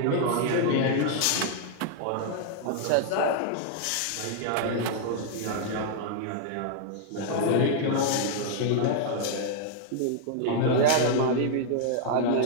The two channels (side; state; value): both; different; correlation -0.01